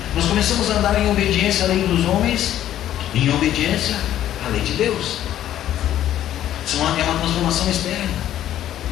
Nós começamos a andar em obediência à lei dos homens, em obediência à lei de Deus. Isso é uma transformação externa.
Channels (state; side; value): quieter; right; 11.9 dB